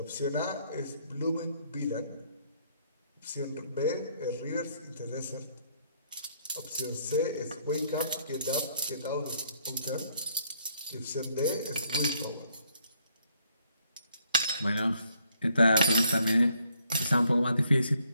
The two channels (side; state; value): both; inverted; correlation -0.69